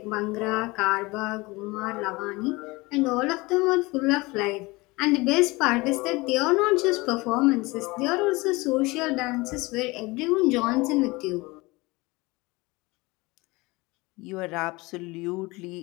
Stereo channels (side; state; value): right; quieter; 23.2 dB